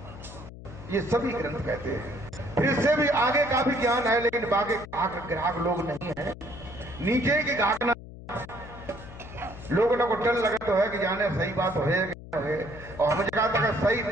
ये सभी ग्रंथ कहते हैं। फिर इससे भी आगे का भी ज्ञान है, लेकिन बाकी ग्राहक लोग नहीं है। नीचे की घाकना लोगों को डर लगा तो है कि जाने सही बात हो है, और हमें कहा था कि सही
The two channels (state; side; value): noise; left; hum, 15 dB below the sound